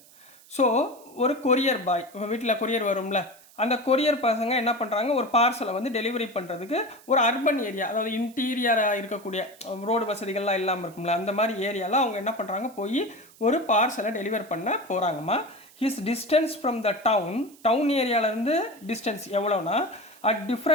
So ஒரு கொரியர் பாய், வீட்டில் கொரியர் வரும்ல, அந்த கொரியர் பசங்க என்ன பண்ணுறாங்க, ஒரு பார்சலை வந்து டெலிவரி பண்ணுறதுக்கு ஒரு அர்பன் ஏரியா, அதாவது இன்டீரியராக இருக்கக்கூடிய ரோடு வசதிகள்லாம் இல்லாமல் இருக்கும்ல, அந்த மாதிரி ஏரியாவில் அவங்க என்ன பண்ணுறாங்க, போய் ஒரு பார்சலை டெலிவர் பண்ண போகிறாங்கம்மா. His distance from the town ஏரியாவிலேருந்து டிஸ்டன்ஸ் எவ்வளோனா at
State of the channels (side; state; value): right; noise; hiss, 25 dB below the sound